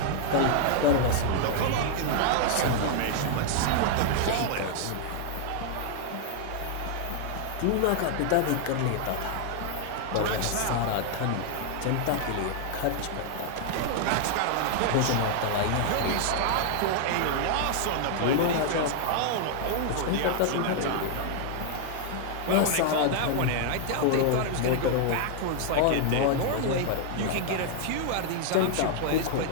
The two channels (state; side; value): different; both; correlation 0.00